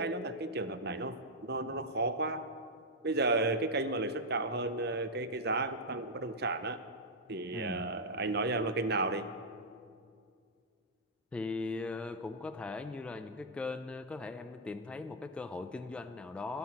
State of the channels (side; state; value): both; normal; correlation -0.05